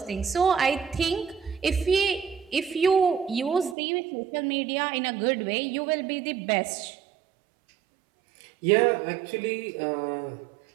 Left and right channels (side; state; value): left; drops out; at 3.8 s